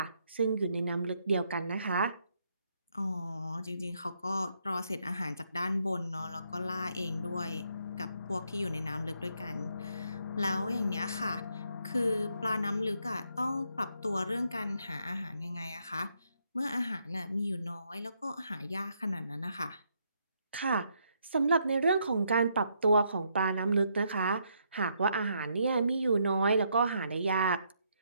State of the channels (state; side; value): inverted; both; correlation -0.75